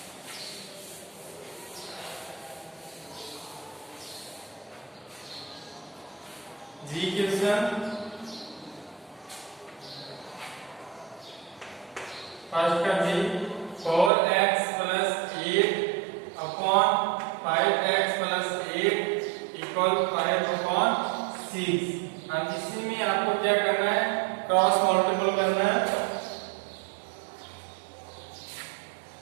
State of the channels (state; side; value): drops out; left; at 14.1 s